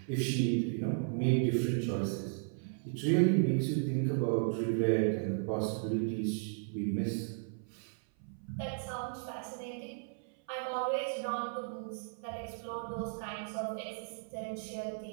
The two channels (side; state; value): left; silent; 54 dB below the other